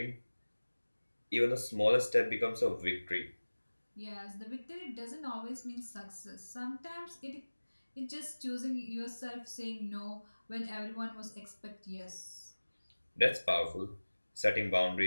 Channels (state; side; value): inverted; both; correlation -1.00